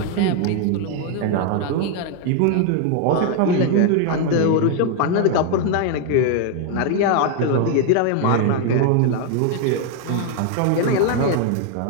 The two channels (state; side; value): different; both; correlation 0.00